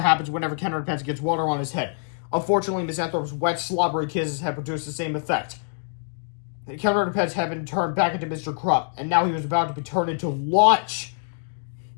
happens whenever Ken Underpants gets water on his head. Unfortunately, Miss Anthrope's wet, slobbery kisses had produced the same effect. Ken Underpants had been turned back into Mr. Krupp, and now he was about to be turned into lunch.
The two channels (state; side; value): silent; right; 62 dB below the other